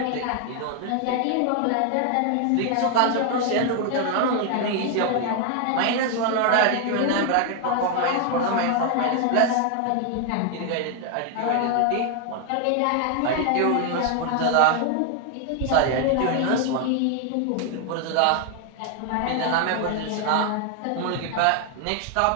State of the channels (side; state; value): both; different; correlation 0.00